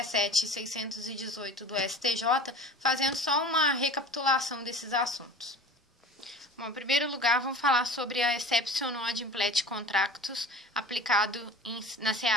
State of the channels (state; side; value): normal; both; correlation 0.40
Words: e 618 do STJ, fazendo só uma recapitulação desses assuntos. Bom, em primeiro lugar, vamos falar sobre a exception ad implet contractus aplicado na